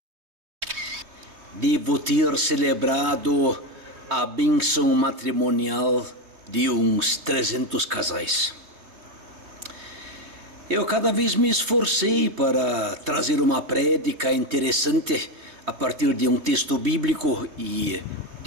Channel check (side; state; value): left; late; 3.2 ms